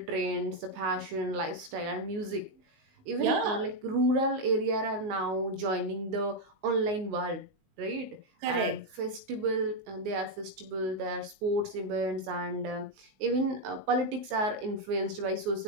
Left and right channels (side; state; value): left; late; 19 ms